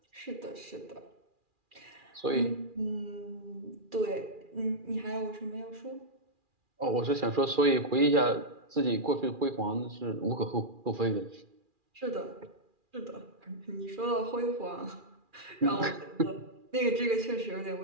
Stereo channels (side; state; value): left; late; 2.4 ms